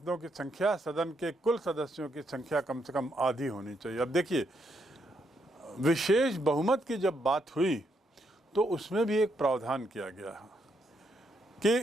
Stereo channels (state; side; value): normal; both; correlation 0.77